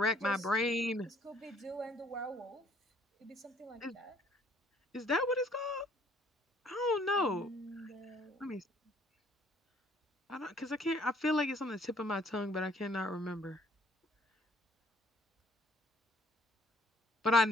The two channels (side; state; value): both; normal; correlation 0.61